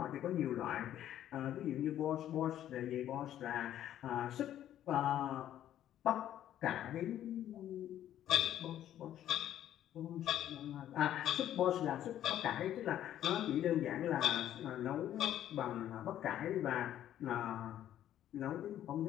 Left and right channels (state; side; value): quieter; right; 11.6 dB